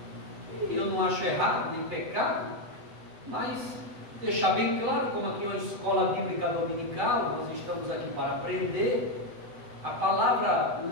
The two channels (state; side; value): late; left; 8.1 ms